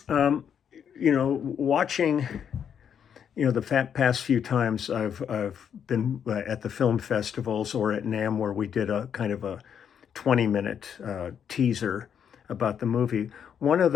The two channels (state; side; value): quieter; right; 8.1 dB